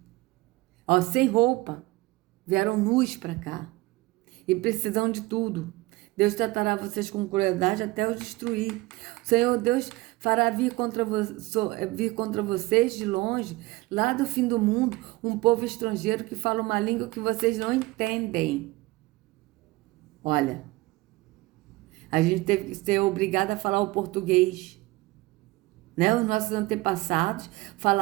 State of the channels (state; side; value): quieter; left; 20.7 dB